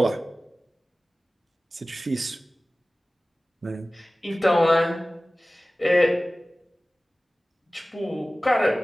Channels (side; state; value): both; normal; correlation 0.97